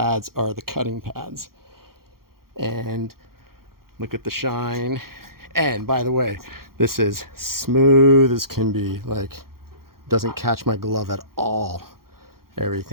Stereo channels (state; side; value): late; left; 0.93 ms